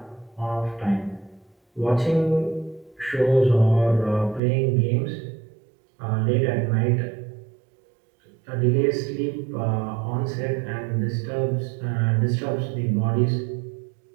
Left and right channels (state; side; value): drops out; left; at 4.4 s